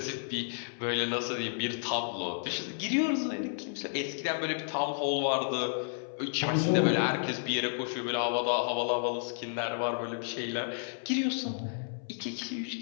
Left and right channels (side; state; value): right; silent; 56 dB below the other